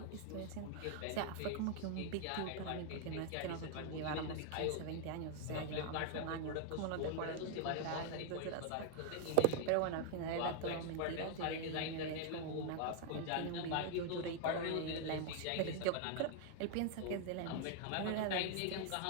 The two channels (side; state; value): both; different; correlation 0.01